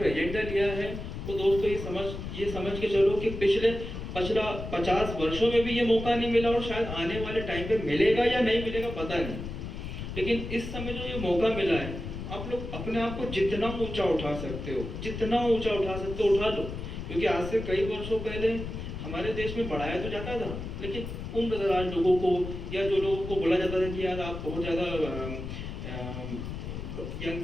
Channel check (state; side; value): noise; left; rumble, 7 dB below the sound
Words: एजेंडा लिया है, वो दोस्तों ये समझ के चलो कि पिछला 50 वर्षों में भी ये मौका नहीं मिला, और शायद आने वाले टाइम पे मिलेगा या नहीं मिलेगा पता नहीं, लेकिन इस समय जो ये मौका मिला है, आप लोग अपने आप को जितना ऊंचा उठा सकते हो, जितना ऊंचा उठा सकते हो उठा लो। क्योंकि आज से कई वर्षों पहले हमारे देश में बढ़ाया तो जाता था, लेकिन उम्रदराज लोगों को या जो लोगों को बोला जाता था कि यार आप बहुत ज़्यादा यंग,